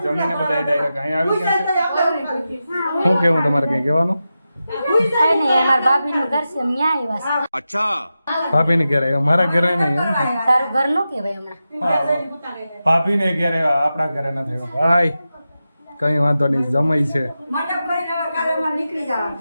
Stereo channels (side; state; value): both; inverted; correlation -0.91